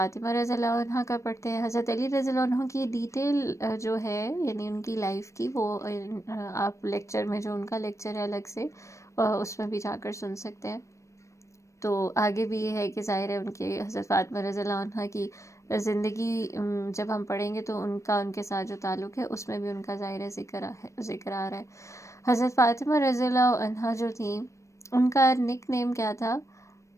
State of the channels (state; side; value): late; right; 0.15 ms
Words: رضی اللہ عنہ کا پڑھتے ہیں. حضرت علی رضی اللہ عنہ کی ڈیٹیل جو ہے یعنی ان کی لائف کی وہ آپ لیکچر میں جو ان کا لیکچر ہے الگ سے اس میں بھی جا کر سن سکتے ہیں. تو آگے بھی یہ ہے کہ ظاہر ہے ان کے حضرت فاطمہ رضی اللہ عنہ کی زندگی جب ہم پڑھیں گے تو ان کے ساتھ جو تعلق ہے اس میں بھی ان کا ظاہر ذکر آ رہا ہے. حضرت فاطمہ رضی اللہ عنہ جو تھیں ان کا نک نیم کیا تھا؟